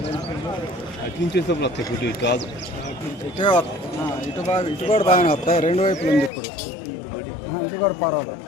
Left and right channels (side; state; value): right; drops out; at 6.3 s